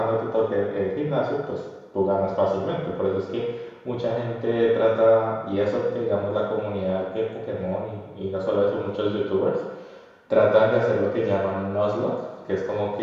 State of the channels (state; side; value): identical; both; correlation 1.00